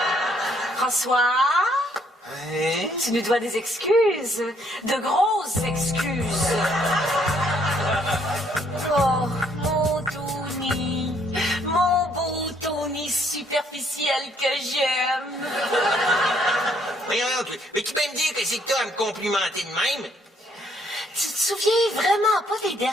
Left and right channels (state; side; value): normal; both; correlation 0.67